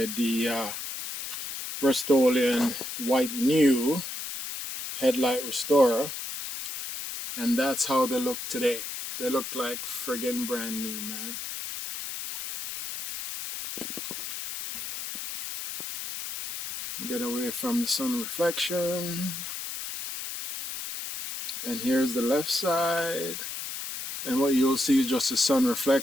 the Rustoleum White New headlight restorer. And that's how they look today. They look like friggin' brand new, man. Get away from the sun reflection. And here's the left side. And what you'll see is just the sun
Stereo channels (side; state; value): left; noise; hiss, 7 dB below the sound